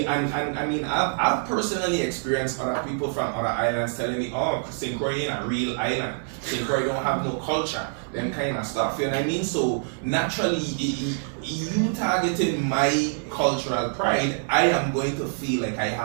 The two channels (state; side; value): silent; left; digital silence